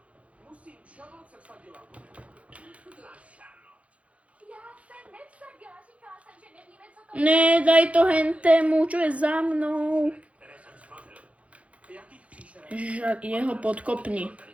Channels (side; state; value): left; late; 0.064 ms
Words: Charlotte se vsadila. Já se nevsadila, říkala jsem, že nevíme, co to je. Ne, daj to hentému, čo je za mnou. Jakých příšer? Jeho podkopni.